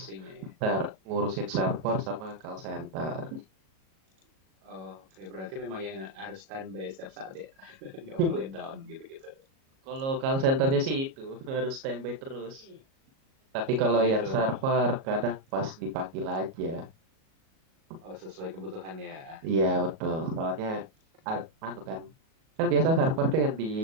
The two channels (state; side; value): late; left; 37 ms